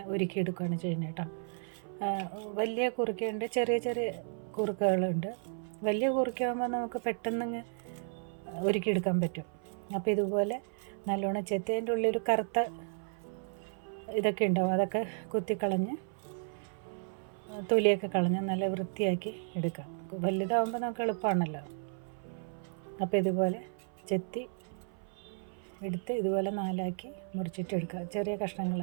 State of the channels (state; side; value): silent; left; 55 dB below the other